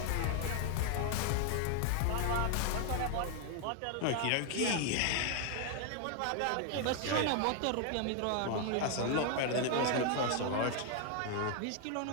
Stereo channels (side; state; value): both; different; correlation 0.00